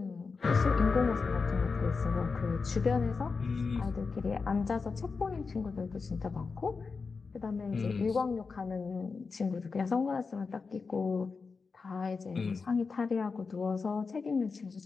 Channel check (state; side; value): quieter; right; 4.7 dB